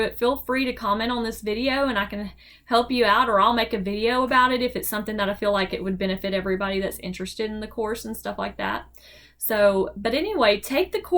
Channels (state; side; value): identical; both; correlation 1.00